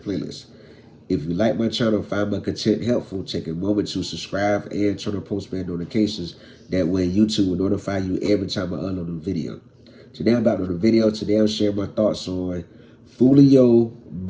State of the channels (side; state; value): both; identical; correlation 1.00